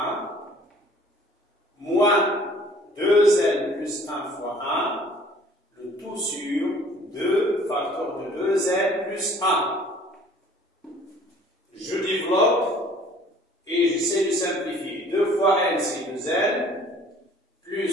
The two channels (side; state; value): both; normal; correlation 0.53